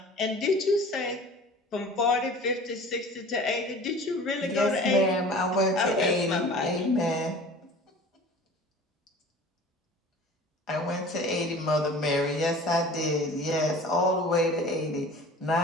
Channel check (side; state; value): both; normal; correlation 0.42